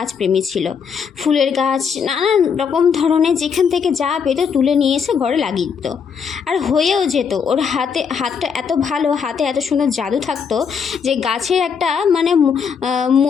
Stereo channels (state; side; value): quieter; right; 6.5 dB